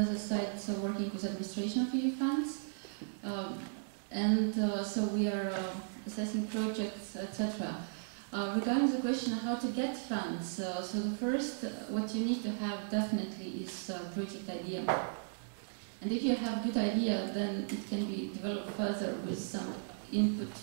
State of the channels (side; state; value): left; silent; digital silence